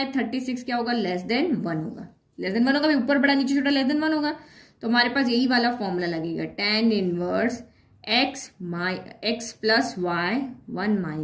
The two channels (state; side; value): identical; both; correlation 1.00